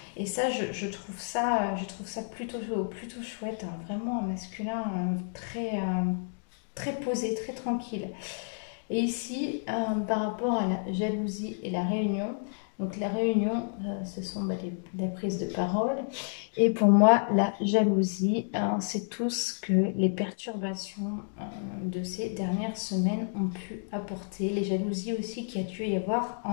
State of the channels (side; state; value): right; silent; digital silence